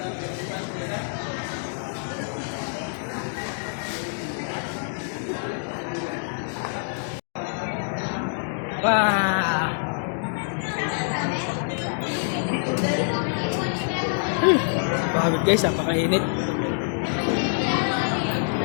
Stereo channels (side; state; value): right; silent; digital silence